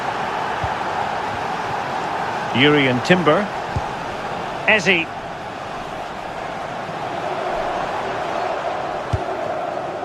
Urian Timber. Eze.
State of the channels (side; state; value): both; identical; correlation 1.00